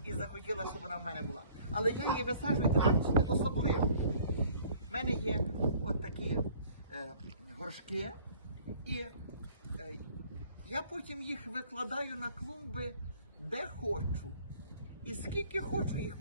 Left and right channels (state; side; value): inverted; both; correlation -0.55